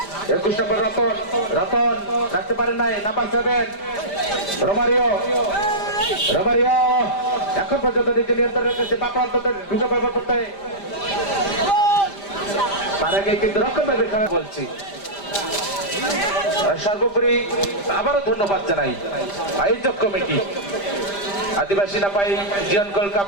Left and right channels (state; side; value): late; right; 5.0 ms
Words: 21 নম্বর রতন রাখতে পারেন নাই নাম্বার 7 রোমারিও এখন পর্যন্ত নিজে নিয়ন্ত্রণ রেখেছে বাকরান্ত ঢুকে ব্যবহার করতে তার আগে কিন্তু রক্ষণভাবে খেলা বলছি সর্বোপরি আবারও ধন্যবাদ জানাই আয়োজক কমিটি আদিবাসী নাপাই জিয়ন গোল্ড কাপ